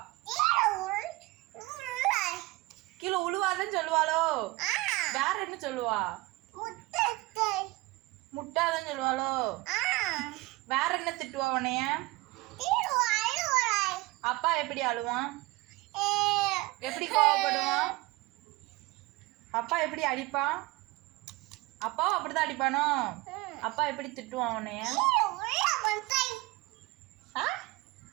கீழே உழுவாதன்னு சொல்லுவாளோ? வேற என்ன சொல்லுவா? முட்டாதன்னு சொல்லுவாளோ? வேற என்ன திட்டுவா உன்னைய? அப்பா எப்படி அழுவான்? எப்படி கோவப்படுவான்? அப்பா எப்படி அடிப்பான்? அப்பாவும் அப்படிதான் அடிப்பானோ? அப்பா எப்படி திட்டுவான் உன்னைய?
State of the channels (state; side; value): quieter; left; 21.6 dB